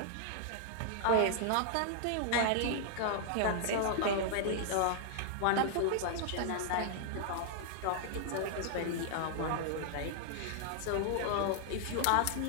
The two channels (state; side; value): different; both; correlation -0.01